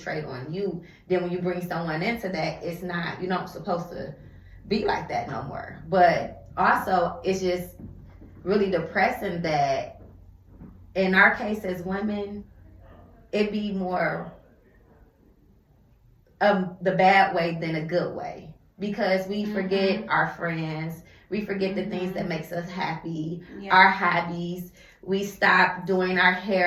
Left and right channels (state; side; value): identical; both; correlation 1.00